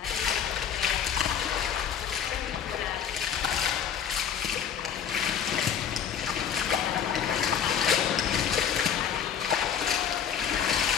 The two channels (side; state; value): right; quieter; 8.3 dB